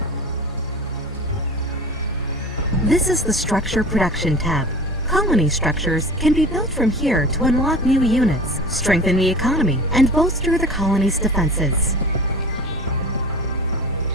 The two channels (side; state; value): both; normal; correlation 0.37